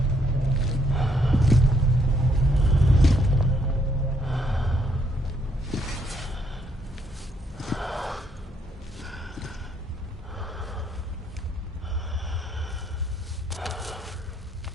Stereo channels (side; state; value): both; normal; correlation 0.71